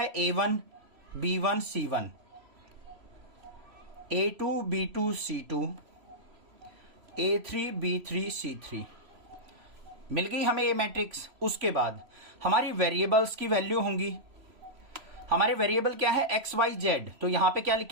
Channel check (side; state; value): left; late; 3.0 ms